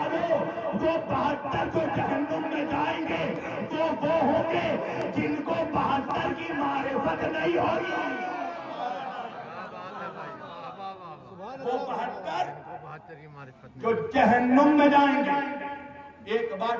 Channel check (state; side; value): identical; both; correlation 1.00